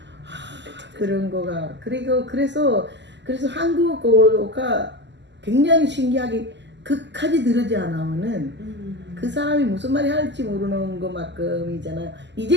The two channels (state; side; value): late; left; 0.51 ms